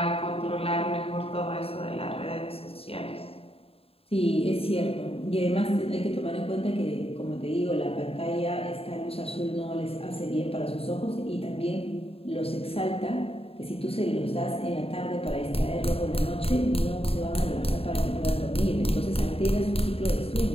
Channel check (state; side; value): late; right; 0.28 ms